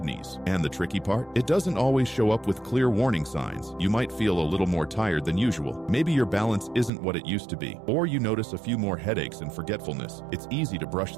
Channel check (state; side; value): drops out; left; at 6.9 s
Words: And the tricky part? It doesn't always show up with clear warning signs. You might feel a little more tired than usual. Maybe your balance isn't what it used to be. Or you notice a few more headaches and forgetfulness. It's easy to brush